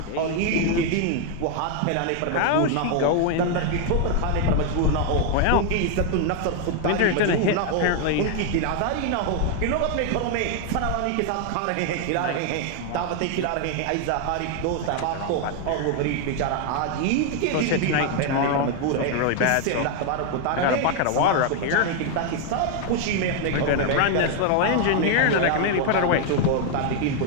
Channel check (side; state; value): both; different; correlation 0.00